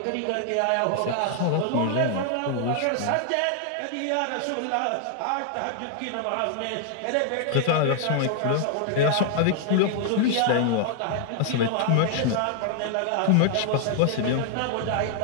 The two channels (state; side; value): different; both; correlation 0.00